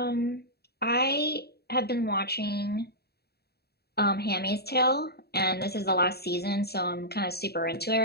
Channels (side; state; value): right; late; 0.47 ms